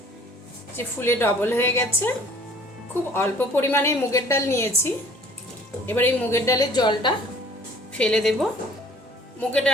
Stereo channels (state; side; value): normal; both; correlation 0.53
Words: যে ফুলে ডবল হয়ে গেছে। খুব অল্প পরিমাণে মুগের ডাল নিয়েছি। এবার এই মুগের ডালের জলটা ফেলে দেব। মুগের